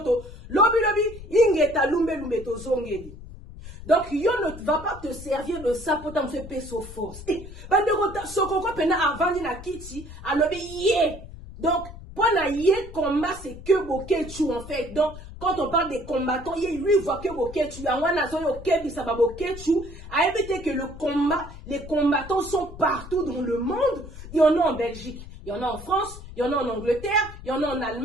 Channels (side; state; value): left; noise; rumble, 14 dB below the sound